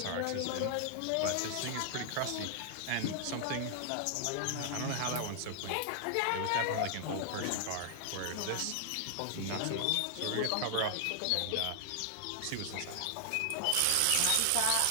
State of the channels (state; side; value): different; both; correlation 0.00